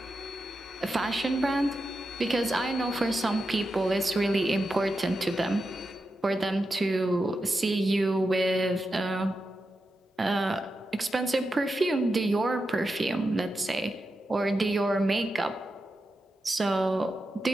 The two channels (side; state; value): both; normal; correlation 0.89